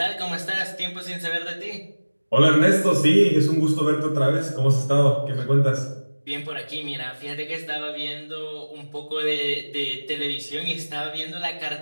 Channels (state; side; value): inverted; both; correlation -1.00